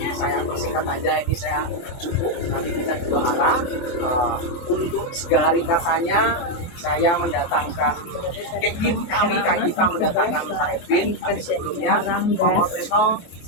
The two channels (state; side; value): late; right; 23 ms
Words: saya persingkat aja, ini saya cukup, nanti kita dua arah. Untuk segala ringkasannya saya mendatangkan tim kami, kita mendatangkan Pak Edwin, tapi sebelumnya Pak Tresno